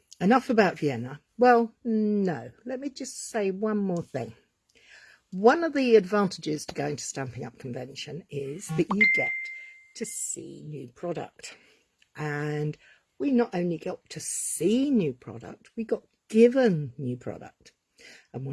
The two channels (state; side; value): identical; both; correlation 1.00